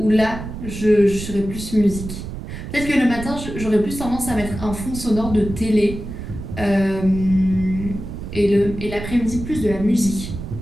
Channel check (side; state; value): right; noise; rumble, 9 dB below the sound